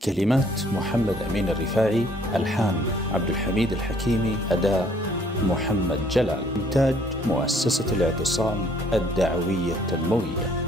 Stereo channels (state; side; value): normal; both; correlation 0.61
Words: كلمات محمد أمين الرفاعي، ألحان عبد الحميد الحكيمي، أداء محمد جلال. إنتاج مؤسسة الاعتصام الدعوية التنموية.